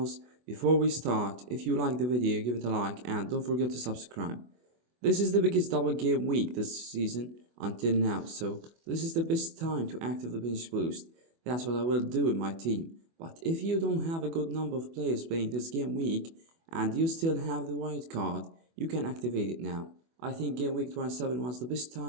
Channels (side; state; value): left; late; 24 ms